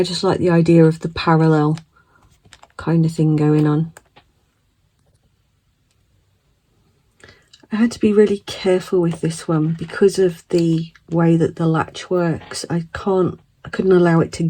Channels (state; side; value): identical; both; correlation 1.00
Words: just like the idea of the parallel kind of thing going on. I had to be really careful with this one because of the way that the latch works. I couldn't allow it to